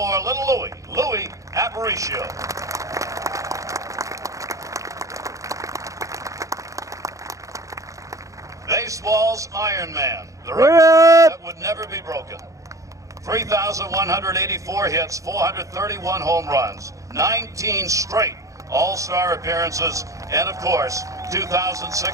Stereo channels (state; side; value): late; left; 0.16 ms